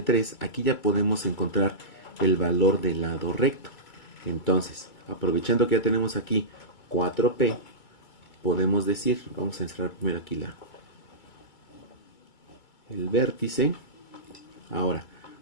3, aquí ya podemos encontrar el valor del lado recto. Entonces, aprovechando que ya tenemos aquí 4P, podemos decir, vamos a encerrar primero aquí el vértice. Ahora,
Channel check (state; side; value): late; right; 2.3 ms